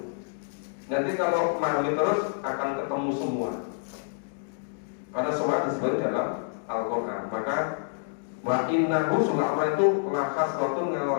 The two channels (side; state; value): right; silent; digital silence